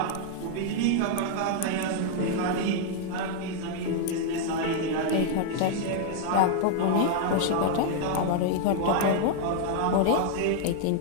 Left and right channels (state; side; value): different; both; correlation 0.00